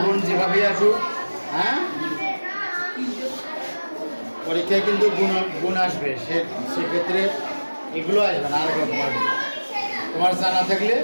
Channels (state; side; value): inverted; both; correlation -1.00